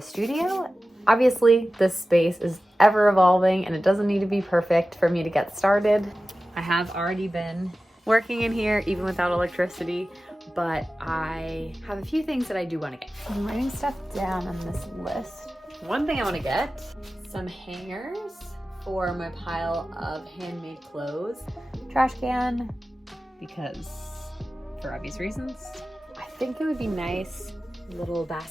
studio. Obviously, this space is ever evolving and it doesn't need to be perfect for me to get started. I have already been working in here even without electricity, but I have a few things that I do want to get. I'm writing stuff down on this list. One thing I want to get, some hangers for my pile of handmade clothes. Trash can, because for obvious reasons. I think it would be nice, little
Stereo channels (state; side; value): normal; both; correlation 0.95